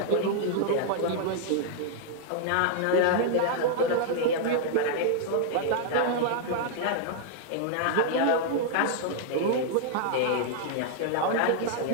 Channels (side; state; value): both; different; correlation -0.01